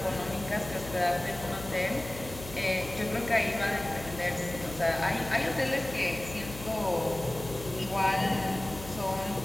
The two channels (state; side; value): noise; left; hum, 13 dB below the sound